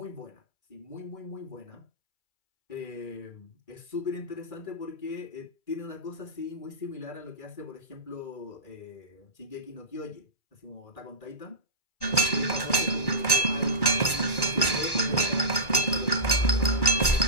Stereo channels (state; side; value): late; right; 2.3 ms